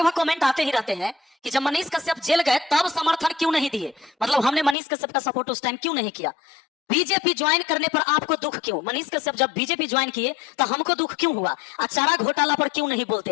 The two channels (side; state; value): right; drops out; at 4.8 s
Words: कमेंट आते ही रहते हैं कि जब मनीष कश्यप जेल गए तब समर्थन क्यों नहीं दिए, मतलब हमने मनीष कश्यप का सपोर्ट उस टाइम क्यों नहीं किया। बीजेपी ज्वाइन करने पर आपको दुख क्यों, मनीष कश्यप जब बीजेपी ज्वाइन किए तो हमको दुख क्यों हुआ, चारा घोटाला पर क्यों नहीं बोलते